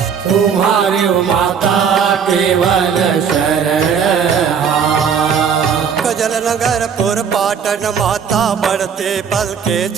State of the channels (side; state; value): left; quieter; 7.0 dB